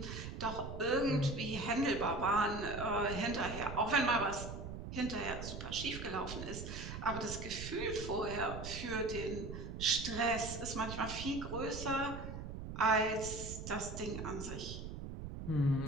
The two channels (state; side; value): noise; right; rumble, 8 dB below the sound